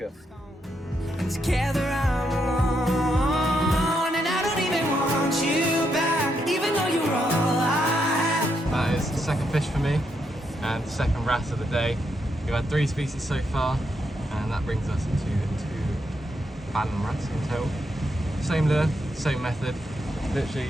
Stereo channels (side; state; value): both; normal; correlation 0.80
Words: Together I'm alone, and I don't even want you back, even though you're all I have. That is the second fish for me and the second wrasse of the day. We've had 3 species so far, and that brings us to 2 Fallon wrasse in total. Same lure, same method.